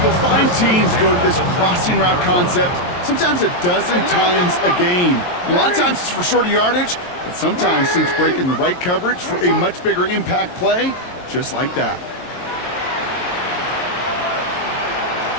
you'll find teams go to this crossing route concept sometimes a dozen times a game. A lot of times it's for shorter yardage, but sometimes things break in the right coverage for a much bigger impact play, just like that.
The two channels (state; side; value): late; right; 23 ms